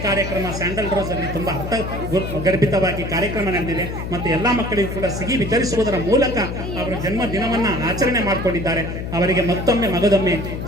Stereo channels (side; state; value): left; noise; hum, 6 dB below the sound